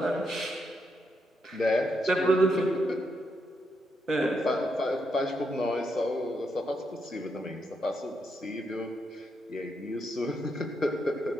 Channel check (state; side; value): normal; both; correlation 0.80